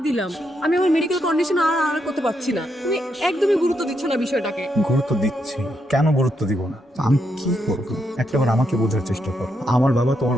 দিলাম, আমি আমার মেডিকেল কন্ডিশন আর করতে পারছি না। তুমি একদমই গুরুত্ব দিচ্ছ না বিষয়টাকে। গুরুত্ব দিচ্ছি, কেন গুরুত্ব দিব না? আমি কি করবো? একটাবার আমাকে বোঝার চেষ্টা কর। আমার বাবা তোমার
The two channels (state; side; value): normal; both; correlation 0.80